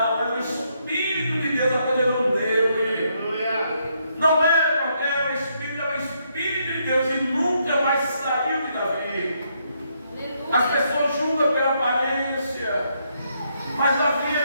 era o Espírito de Deus apoderando dele. Não era qualquer Espírito, era o Espírito de Deus e nunca mais saiu de Davi. As pessoas julgam pela aparência, mas Davi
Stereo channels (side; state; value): both; inverted; correlation -0.75